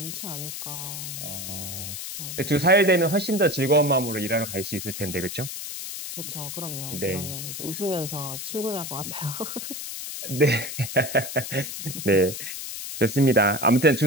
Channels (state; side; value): noise; left; hiss, 7 dB below the sound